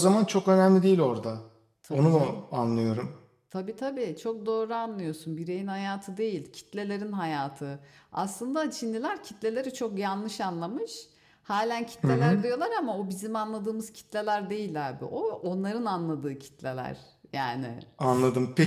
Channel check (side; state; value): both; identical; correlation 1.00